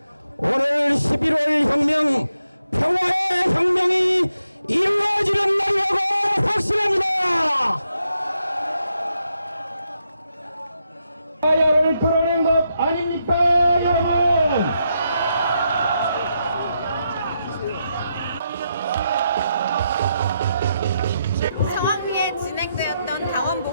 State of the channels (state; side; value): inverted; both; correlation -0.83